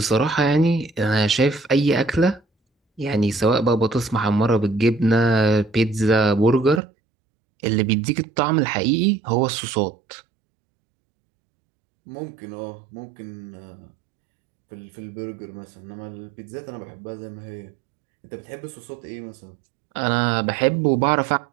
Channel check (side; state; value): left; drops out; at 6.8 s